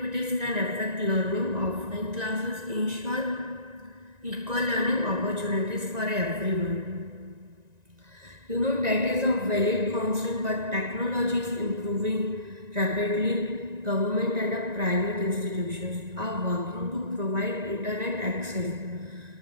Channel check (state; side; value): late; left; 1.9 ms